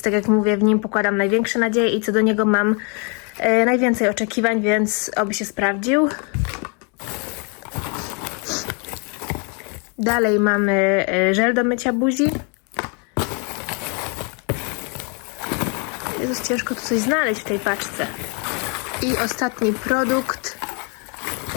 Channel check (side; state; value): right; quieter; 35.9 dB